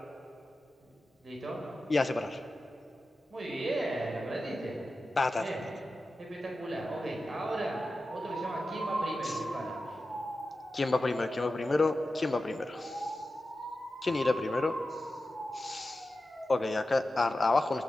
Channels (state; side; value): normal; both; correlation 0.93